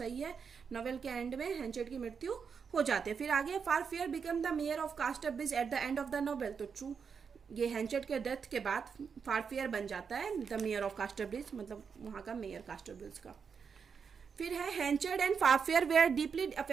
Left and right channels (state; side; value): quieter; left; 6.2 dB